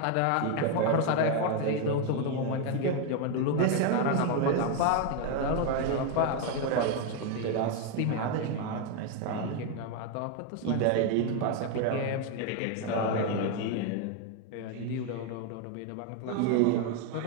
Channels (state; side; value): different; both; correlation 0.01